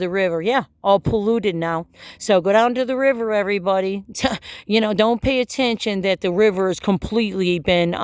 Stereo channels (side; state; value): both; identical; correlation 1.00